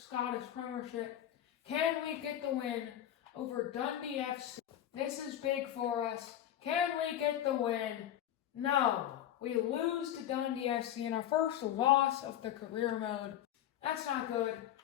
Premiership. Can we get the win over Dundee FC? This is big for us. Can we get the win? No. We lose to Dundee FC in our first loss of the career mode. That's not good.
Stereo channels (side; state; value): right; quieter; 11.4 dB